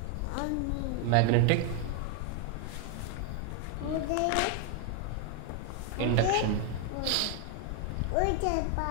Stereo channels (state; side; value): different; both; correlation 0.00